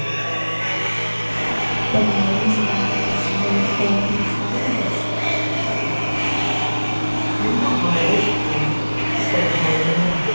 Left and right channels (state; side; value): inverted; both; correlation -1.00